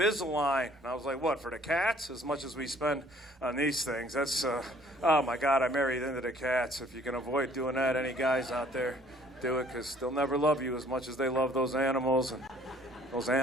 And I was like, what, for the cats? As much as we spend on these things. That's, oh my God, I married into the cats. If you can avoid doing that, any guys out there, do it, because they'll never love you as much as they love those animals. And those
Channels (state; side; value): normal; both; correlation 0.58